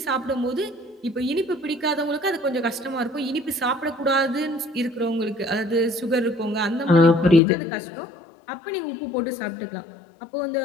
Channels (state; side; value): drops out; right; at 7.4 s